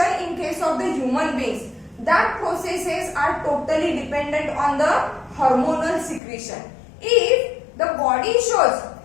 in case of the human beings. That processes are totally dependent on the hormonal secretion. If the body shows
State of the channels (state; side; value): drops out; right; at 6.2 s